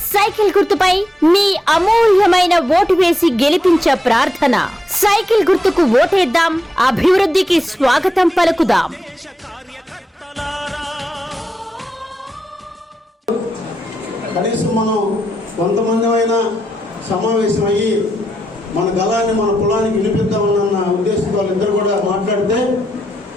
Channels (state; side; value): normal; both; correlation 0.84